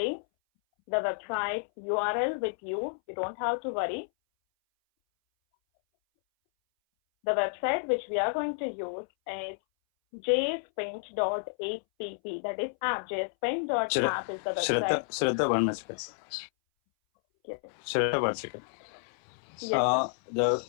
the website URL with you. You don't have to worry. The website which we are going to use is jspaint.app. That is app. jspaint.app is the website. Shraddha, 1 minute. Yes. Shraddha, 1 second. Yes,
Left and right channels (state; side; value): silent; right; 58 dB below the other